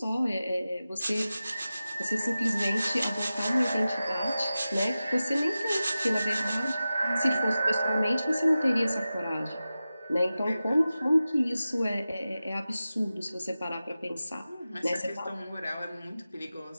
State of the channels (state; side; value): inverted; both; correlation -0.94